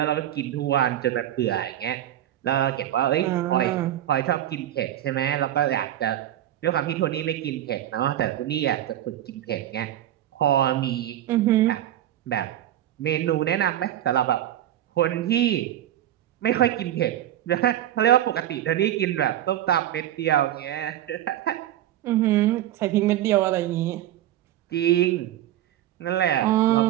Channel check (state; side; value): quieter; left; 12.4 dB